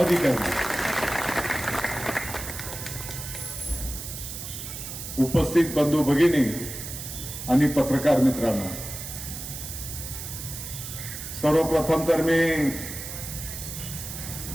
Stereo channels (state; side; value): noise; right; hiss, 8 dB below the sound